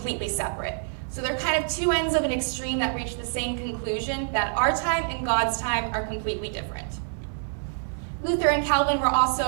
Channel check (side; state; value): left; silent; 61 dB below the other